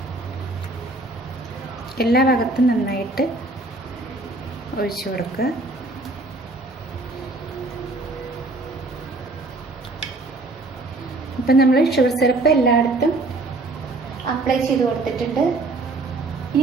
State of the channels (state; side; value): quieter; left; 3.0 dB